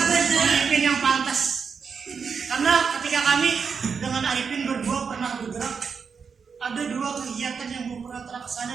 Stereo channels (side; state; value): left; quieter; 5.9 dB